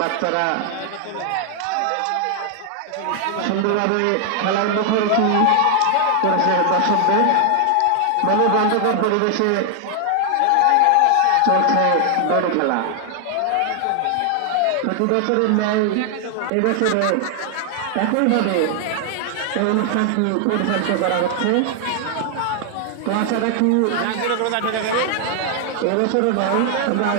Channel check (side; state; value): both; different; correlation 0.00